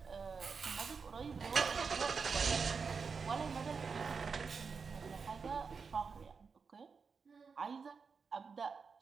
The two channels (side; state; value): left; quieter; 5.3 dB